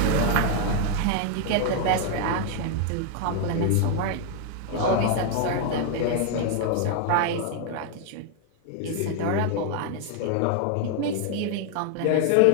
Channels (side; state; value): both; different; correlation 0.00